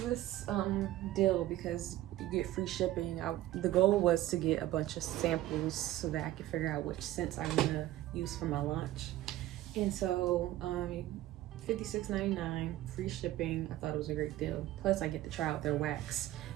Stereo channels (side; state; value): left; quieter; 14.8 dB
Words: deal because you get free shipping. The goal was to get a bunch of samples so that I could figure out which scents I'm gonna use for my launch. And so $56.99, free shipping. I thought it was a great deal. Plus I get to try out their wax,